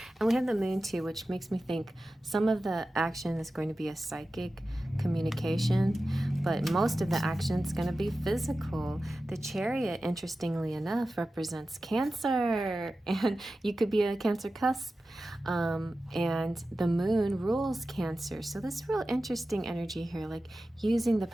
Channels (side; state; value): both; normal; correlation 0.94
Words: And we have the moon too, which makes me think some of the action is going to be a psychic communication, but most of the action is going to be physical. The Chariot, interestingly enough, represents Cancer, and you could be a Cancer cusp, and the moon rules Cancer. So this real interesting energy here, like using the